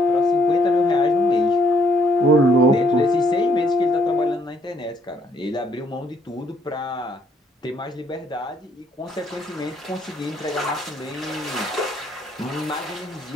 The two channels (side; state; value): both; normal; correlation 0.67